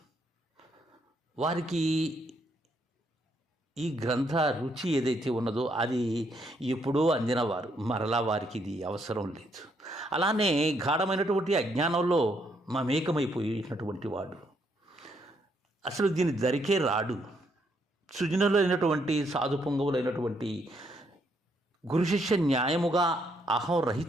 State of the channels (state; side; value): normal; both; correlation 0.74